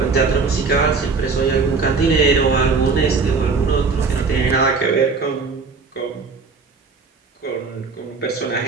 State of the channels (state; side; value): quieter; left; 4.6 dB